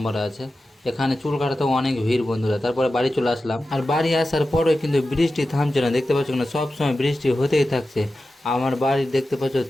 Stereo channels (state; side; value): normal; both; correlation 0.93